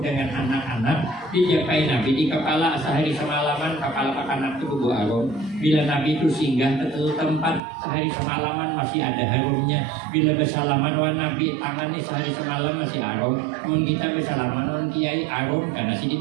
anak-anak, dijapai Nabi di kepala sehari semalaman. Kepala anak itu berbau harum. Bila Nabi itu singgah ke tempat sehari semalaman masih ada harumnya. Bila bersalaman wah Nabi tangannya sehari semalam masih harum. Mun kita bersalaman wah kiai harum karena si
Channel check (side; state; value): left; drops out; at 7.6 s